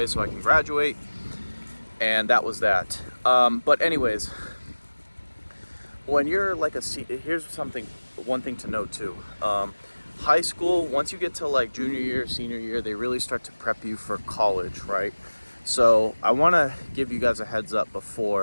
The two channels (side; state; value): both; inverted; correlation -1.00